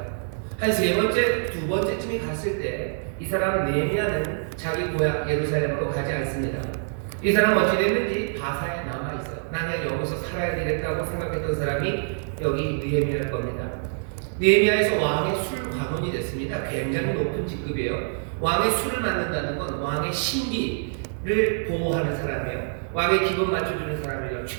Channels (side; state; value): left; silent; 61 dB below the other